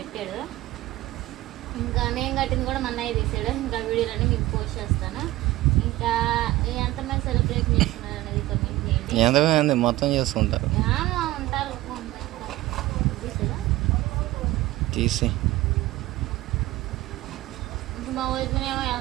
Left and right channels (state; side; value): quieter; left; 17.3 dB